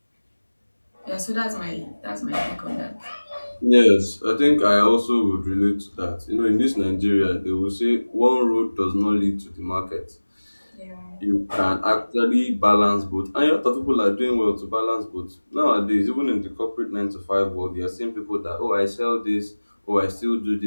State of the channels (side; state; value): both; inverted; correlation -1.00